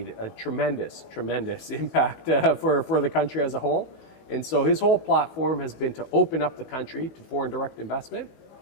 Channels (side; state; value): right; late; 19 ms